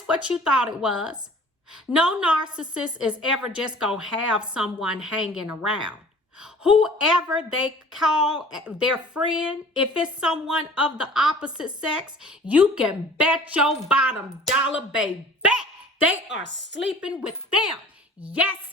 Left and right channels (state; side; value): normal; both; correlation 0.47